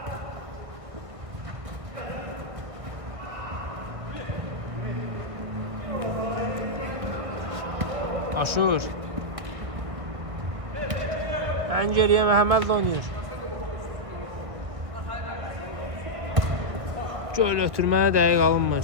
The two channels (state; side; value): late; left; 1.6 ms